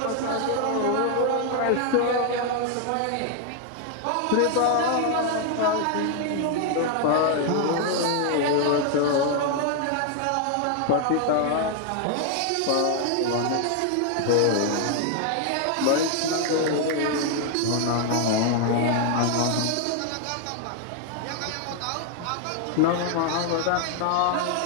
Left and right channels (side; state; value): both; different; correlation 0.00